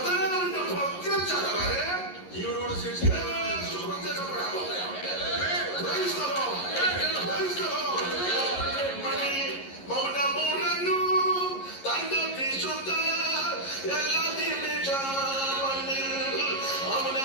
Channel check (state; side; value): late; right; 11 ms